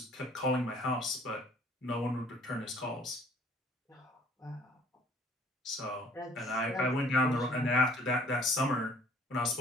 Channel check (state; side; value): normal; both; correlation 0.56